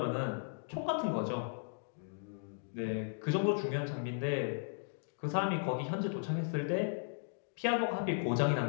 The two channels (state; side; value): silent; right; digital silence